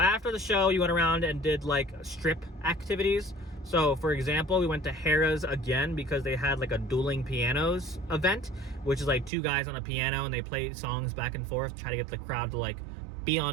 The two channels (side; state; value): left; drops out; at 9.3 s